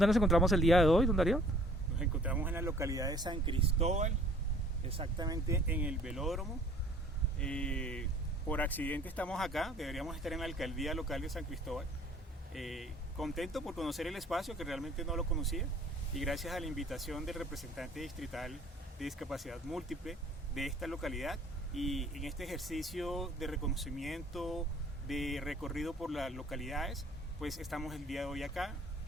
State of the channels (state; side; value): normal; both; correlation 0.55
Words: nos encontramos el día de hoy, don Darío? Nos encontramos en la localidad de San Cristóbal, exactamente en el velódromo. Por accidente estamos acá, deberíamos estar en la alcaldía local de San Cristóbal. Contento por conocer el espacio, que realmente no lo conocía, y gracias a la invitación del representante distrital de discapacidad múltiple de esta localidad, y en este ejercicio de reconocimiento, de recorrido por las localidades, pues estamos el día de hoy acá,